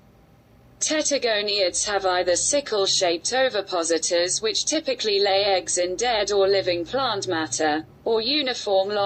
Tettigoniids have either sickle-shaped ovipositors, which typically lay eggs in dead or living plant matter, or uniform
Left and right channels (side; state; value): both; identical; correlation 1.00